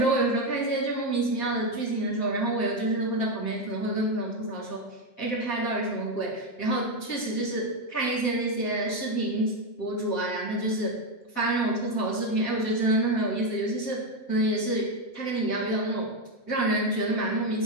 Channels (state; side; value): late; right; 7.6 ms